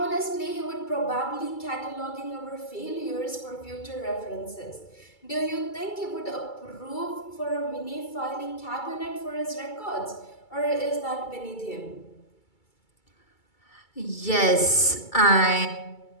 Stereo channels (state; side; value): late; right; 2.3 ms